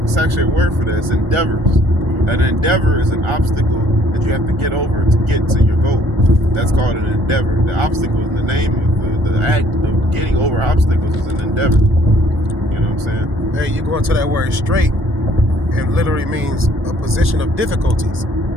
It's actually a word for that. It's endeavors. An endeavor is an obstacle that you have to get over to get to your goal. That's called an endeavor. The obstacle is the name of the act of getting over obstacles is an endeavor. You know what I'm saying? Hey, you go into that word straight, it literally means a position of difficulties.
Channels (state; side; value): normal; both; correlation 0.61